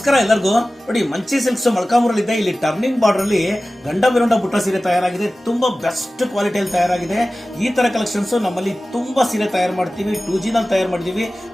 ಎಲ್ಲರಿಗೂ. ನೋಡಿ, ಮಂಚಿ ಸಿಲ್ಕ್ಸ್ ಮೊಳಕಾಮೂರಲ್ಲಿದೆ. ಇಲ್ಲಿ ಟರ್ನಿಂಗ್ ಬಾರ್ಡರ್ ಅಲ್ಲಿ ಗಂಡ ಬಿರುಂಡ ಬುಟ್ಟ ಸೀರೆ ತಯಾರಾಗಿದೆ. ತುಂಬಾ ಬೆಸ್ಟ್ ಕ್ವಾಲಿಟಿಯಲ್ಲಿ ತಯಾರಾಗಿದೆ. ಈ ತರ ಕಲೆಕ್ಷನ್ಸ್ ನಮ್ಮಲ್ಲಿ ತುಂಬಾ ಸೀರೆ ತಯಾರು ಮಾಡ್ತೀವಿ. 2G ನಲ್ಲಿ ತಯಾರು ಮಾಡಿದೀವಿ.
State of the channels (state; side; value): normal; both; correlation 0.96